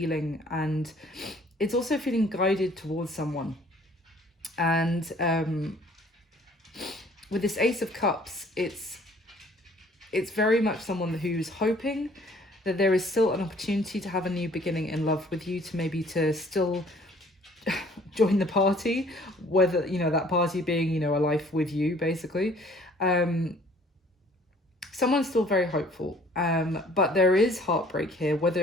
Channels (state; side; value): normal; both; correlation 0.56